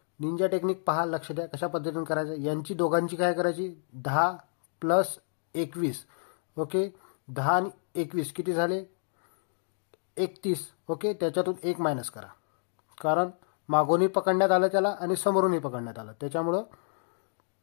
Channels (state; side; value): silent; right; digital silence